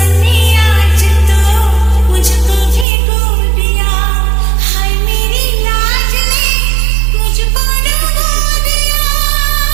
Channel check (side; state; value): left; drops out; at 2.9 s